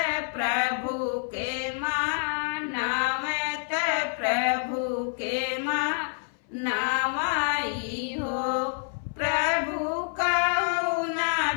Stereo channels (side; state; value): right; silent; 60 dB below the other